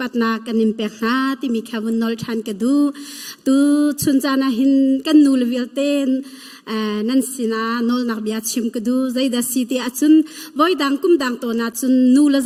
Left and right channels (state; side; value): identical; both; correlation 1.00